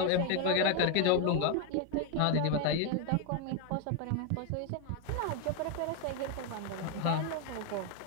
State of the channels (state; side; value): different; both; correlation 0.01